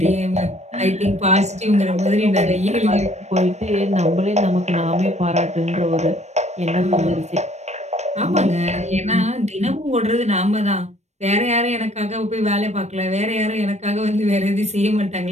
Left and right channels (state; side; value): late; left; 0.32 ms